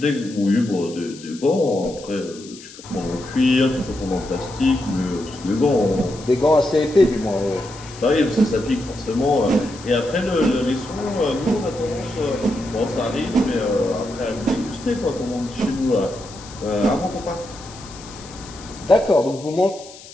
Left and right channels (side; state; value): left; noise; hiss, 18 dB below the sound